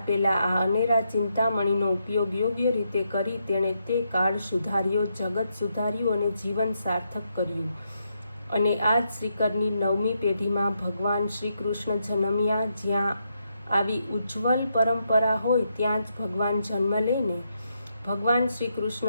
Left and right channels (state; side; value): inverted; both; correlation -0.80